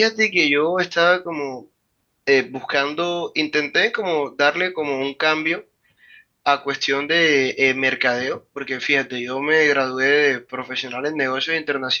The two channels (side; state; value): both; identical; correlation 1.00